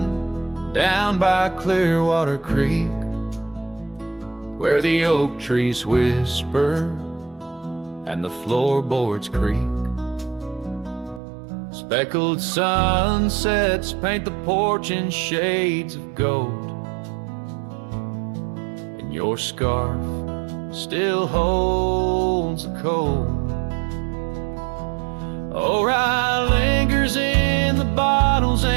down by Clearwater Creek where the oak trees whisper and the floorboards creak. Speckled sunsets paint the porch in shades of gold, and your scarf still holds the cold. Oh, rye lingers in the bottles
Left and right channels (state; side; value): drops out; left; at 11.2 s